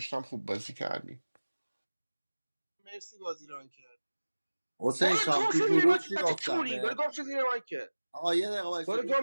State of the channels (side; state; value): both; inverted; correlation -1.00